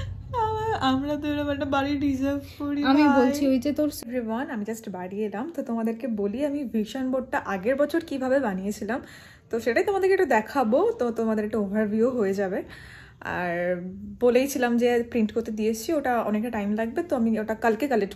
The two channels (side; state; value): both; identical; correlation 1.00